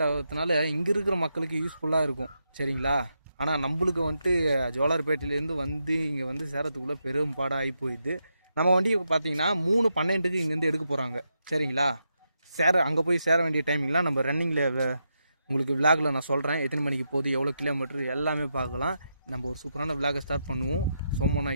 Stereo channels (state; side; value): inverted; both; correlation -0.84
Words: ஆகிறதுனால இங்கே இருக்கிற மக்களுக்கு யூஸ்ஃபுல்லாக இருக்கும், சரிங்களா? ஆனால் நம்மளுக்கு வந்துட்டு ஜோலார்பேட்டையிலேருந்து வந்து இங்கே வந்து சேரத்துக்குள்ளே பெரும் பாடாக ஆகி போயிடுது. நம்ம வண்டி பார்த்தீங்கன்னா 3:12 இங்கேருந்து எடுக்க போகிறாங்க, சரிங்களா? அங்கே போய் சேர வேண்டிய டைமிங்லாம் நம்ம ரன்னிங்கில் உங்களுக்கு விளாகில் நான் சொல்கிறேன். எத்தனை மணிக்கு போகுது, எவ்வளோ கிலோமீட்டர் எல்லாமே பார்க்கலாம். நம்ம ஒரு சூப்பரான விளாகை ஸ்டார்ட் பண்ணுவோம்.